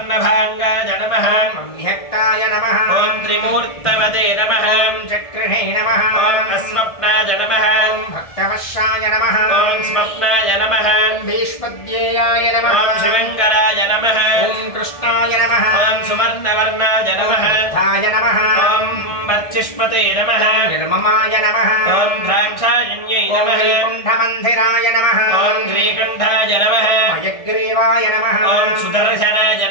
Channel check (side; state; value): right; late; 1.6 ms